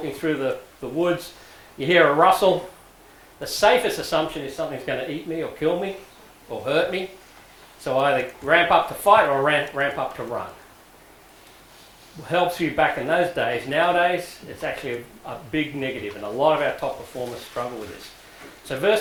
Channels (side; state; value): both; identical; correlation 1.00